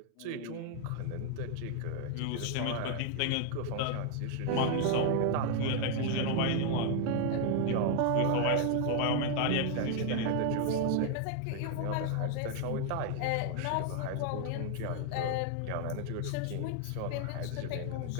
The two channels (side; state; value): both; different; correlation 0.00